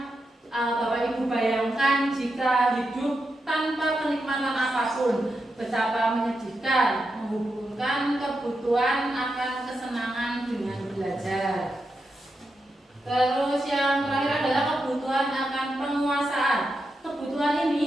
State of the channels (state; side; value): normal; both; correlation 0.87